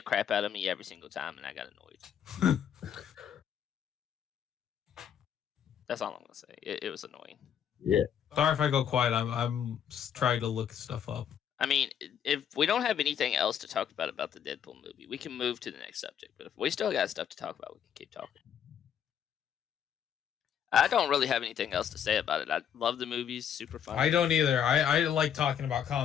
crap out of me every single time, and I got annoyed. That's all I'm gonna say. It was annoying. Yeah. Sorry if I go quiet. I'm trying to look stuff up. I mean, if we don't have anything else to talk about the Deadpool movie, we can move to the next subject. But if we still got stuff to talk about, we can keep talking. I don't really have anything else to say about it. I love the movies, super fun. I don't either. I like talking about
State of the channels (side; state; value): right; quieter; 8.8 dB